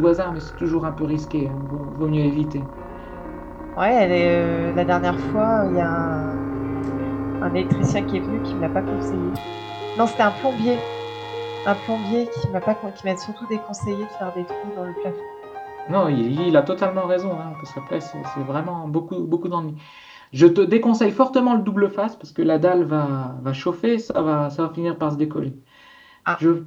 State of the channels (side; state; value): both; identical; correlation 1.00